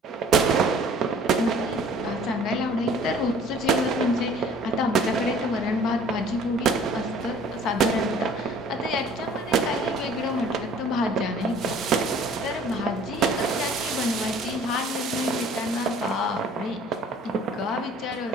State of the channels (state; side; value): normal; both; correlation 0.52